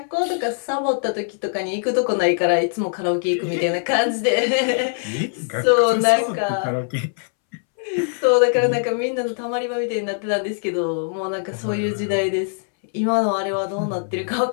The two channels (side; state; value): right; silent; 64 dB below the other